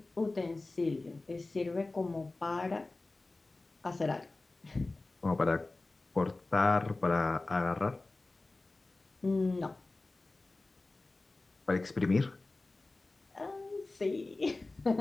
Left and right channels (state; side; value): quieter; right; 3.2 dB